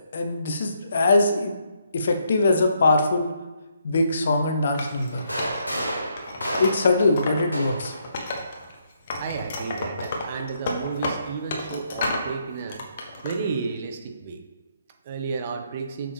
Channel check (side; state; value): both; inverted; correlation -0.75